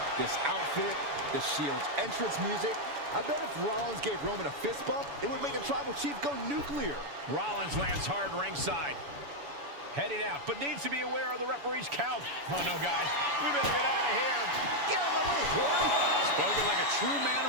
This outfit, the Shield's entrance music, I bet if Rollins gave Roman a fist bump, it would make the Tribal Chief go nuclear. Rollins lands hard ringside. Heading out, but needs to be aware of the referee's count. Oh, no, guys. We better get out of here. Get out of my way, Corey. Spoken like a true man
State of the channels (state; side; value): late; left; 7.0 ms